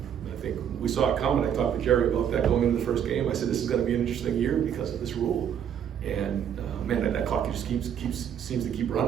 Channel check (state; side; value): quieter; left; 8.9 dB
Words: I think we saw it coming. I talked to Jerry about that going into the first game. I said this is going to be an interesting year because of this rule, and man, that clock just seems to keep